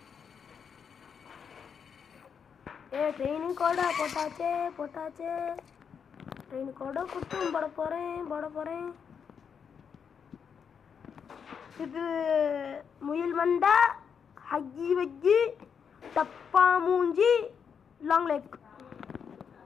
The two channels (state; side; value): quieter; right; 6.9 dB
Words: ட்ரெயின் கூட போட்டாச்சே. ட்ரெயின் கூட குட்டும் போட போகிறேன். இது முயல் மண்டா, ஹக்கி வக்கி, டப்பா மூஞ்சி, லாங் லெக்.